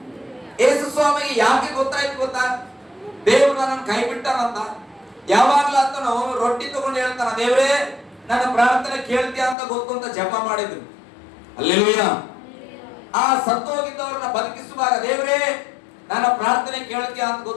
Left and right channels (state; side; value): drops out; right; at 9.6 s